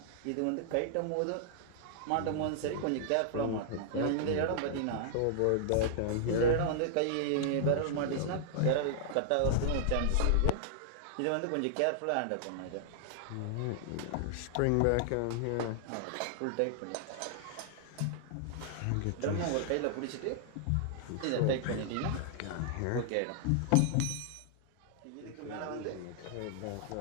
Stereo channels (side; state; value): both; different; correlation -0.01